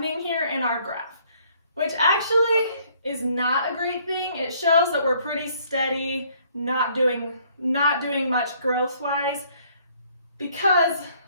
here in our graph, which actually is not a great thing. It shows that we're pretty steady, not doing much growth-wise, because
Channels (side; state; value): both; inverted; correlation -0.63